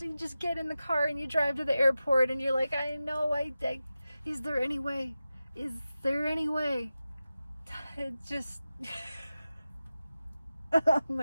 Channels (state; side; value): inverted; both; correlation -0.93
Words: you just get in the car and you drive to the airport and you're like, I know, is there any way? Is there any way? It just, oh